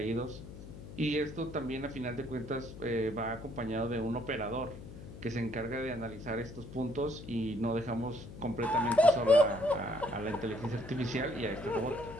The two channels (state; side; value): noise; left; hum, 13 dB below the sound